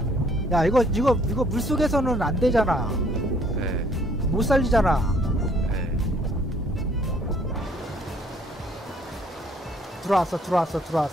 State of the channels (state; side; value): normal; both; correlation 0.62